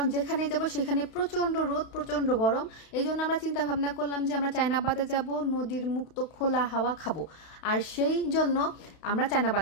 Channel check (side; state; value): right; late; 32 ms